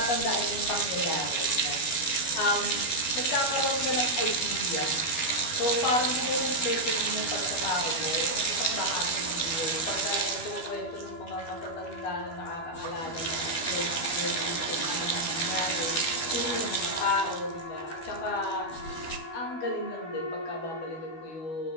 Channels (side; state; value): right; late; 12 ms